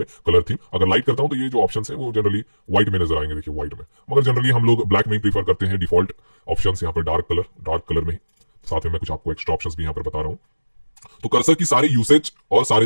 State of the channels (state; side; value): inverted; both; correlation -1.00